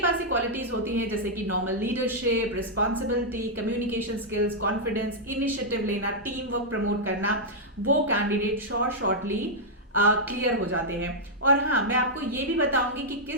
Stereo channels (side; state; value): both; normal; correlation -0.06